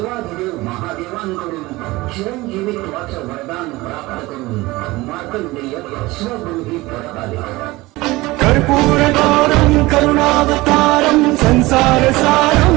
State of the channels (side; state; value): left; quieter; 20.5 dB